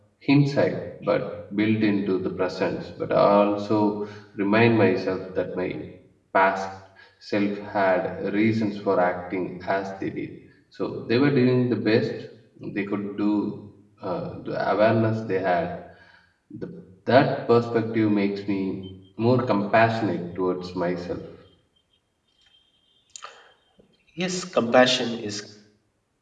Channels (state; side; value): identical; both; correlation 1.00